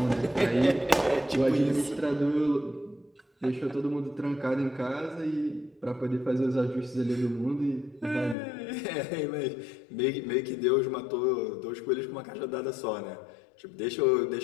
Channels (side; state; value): right; drops out; at 8.3 s